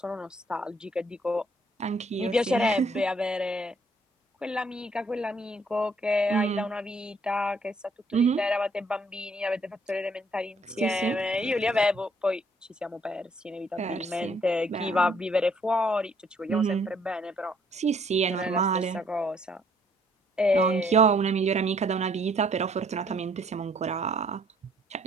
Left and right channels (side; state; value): both; normal; correlation 0.65